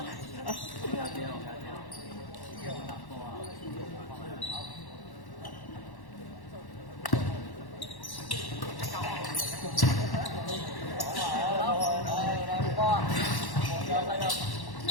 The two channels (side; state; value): right; late; 1.1 ms